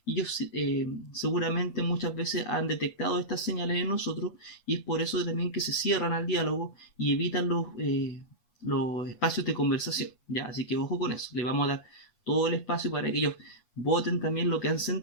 Y ellos seguramente muchas veces han detectado estas señales en nosotros y es por eso también que se cierran al diálogo y evitan los espacios de conversación, ¿ya? Así que ojo con eso, le vamos a dar todo el espacio para que ellos voten también lo que han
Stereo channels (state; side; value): late; right; 8.2 ms